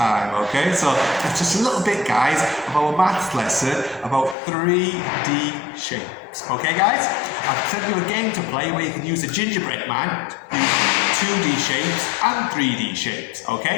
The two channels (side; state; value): right; drops out; at 4.4 s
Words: okay? So that's just a little bit, guys, of our maths lesson about 3D shapes, okay, guys? I've sent you a game to play where you can use a gingerbread man to use 2D shapes and 3D shapes,